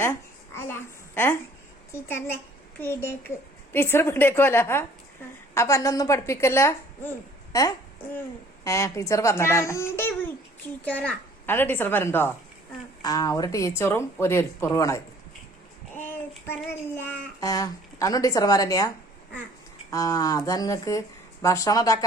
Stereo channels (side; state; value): both; normal; correlation 0.55